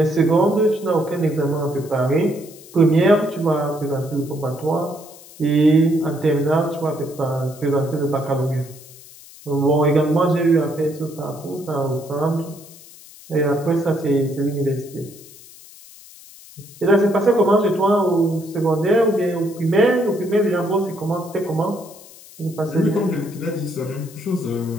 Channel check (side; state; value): left; noise; hiss, 20 dB below the sound